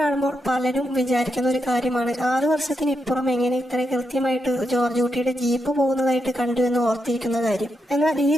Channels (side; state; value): both; normal; correlation 0.84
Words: കാണുമ്പോൾ പലരും വിചാരിക്കുന്ന ഒരു കാര്യമാണ്, 6 വർഷത്തിന് ഇപ്പുറം എങ്ങനെ ഇത്ര കൃത്യമായിട്ട് ജോർജ് കുട്ടിയുടെ ജീപ്പ് പോകുന്നതായിട്ട് കണ്ടു എന്ന് ഓർത്തിരിക്കുന്ന കാര്യം. എന്നാൽ ഈ